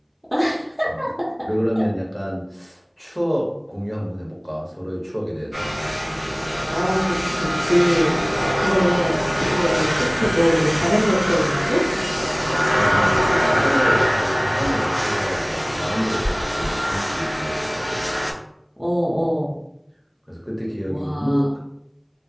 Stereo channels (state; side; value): identical; both; correlation 1.00